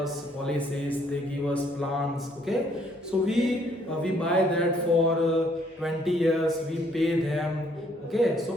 policies, they give us plans. Okay, so we buy that for 20 years, we pay them. Okay,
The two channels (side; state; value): both; normal; correlation 0.66